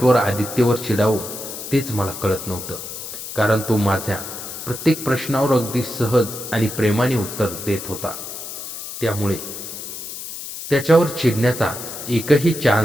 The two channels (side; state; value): left; noise; hiss, 9 dB below the sound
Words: आदित्यवर चिडावं तेच मला कळत नव्हतं, कारण तो माझ्या प्रत्येक प्रश्नावर अगदी सहज आणि प्रेमाने उत्तर देत होता. त्यामुळे त्याच्यावर चिडण्याचा एकही